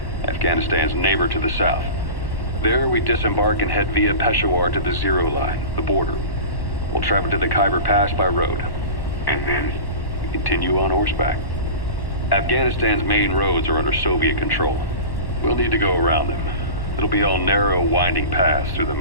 Afghanistan's neighbor to the south. There, we disembark and head via Peshawar to the Zero Line, the border. We'll travel to the Khyber Pass by road. And then? We continue on horseback. Afghanistan's main roads are under Soviet control. We'll need to go around them. It'll be all narrow, winding paths through the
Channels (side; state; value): right; late; 1.1 ms